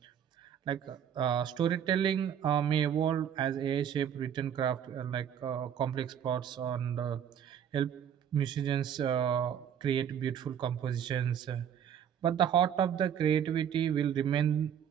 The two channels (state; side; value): quieter; left; 8.9 dB